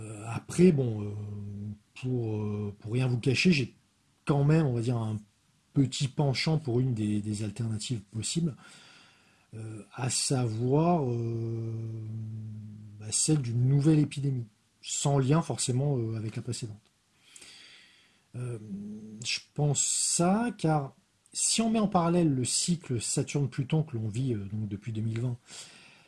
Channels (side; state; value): both; identical; correlation 1.00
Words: Après, pour rien vous cacher, j'ai quand même, on va dire, un petit penchant pour une des alternatives possibles, à savoir celle d'une nouvelle épidémie, sans lien forcément avec la précédente. Je pense ça, car si on met en parallèle le cycle Saturne-Pluton que l'on vit donc depuis 2020